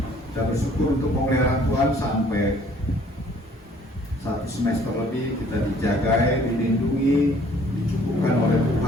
Kita bersyukur untuk pemeliharaan Tuhan sampai 1 semester lebih kita dijagai, dilindungi, dicukupkan oleh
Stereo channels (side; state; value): both; normal; correlation 0.58